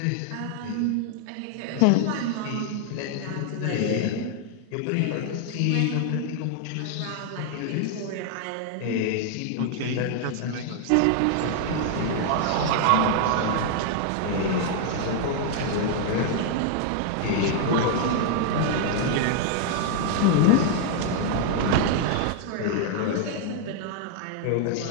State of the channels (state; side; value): different; both; correlation 0.00